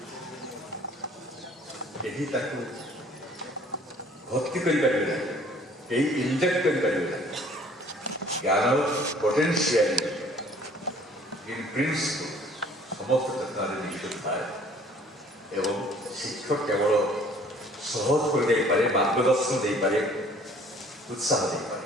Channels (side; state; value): both; normal; correlation 0.54